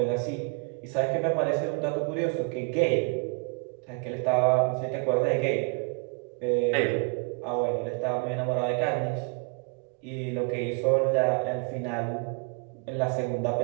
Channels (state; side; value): quieter; left; 35.9 dB